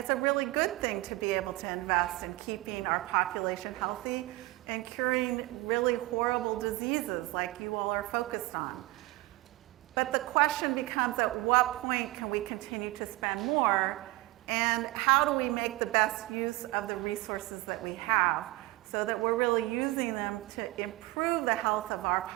a really good thing to be able to invest in keeping our population healthy and curing really horrible diseases like you all are focused on. But the question becomes, at what point can we continue to spend more, and how do we make the best use of the resources that we have so that we're really using them to improve the health of our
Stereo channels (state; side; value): quieter; left; 20.1 dB